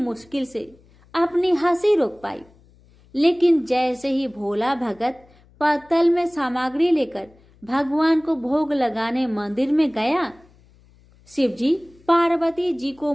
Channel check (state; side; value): noise; left; hum, 29 dB below the sound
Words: से अपनी हंसी रोक पाई, लेकिन जैसे ही भोला भगत पत्तल में सामग्री लेकर भगवान को भोग लगाने मंदिर में गया, शिवजी पार्वती जी को